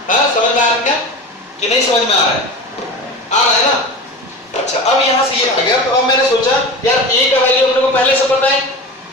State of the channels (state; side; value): normal; both; correlation 0.30